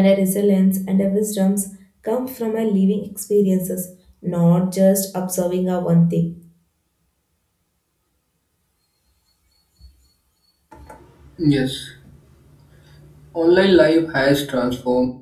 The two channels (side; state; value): both; identical; correlation 1.00